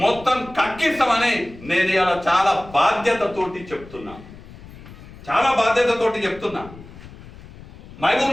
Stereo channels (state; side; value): noise; left; rumble, 18 dB below the sound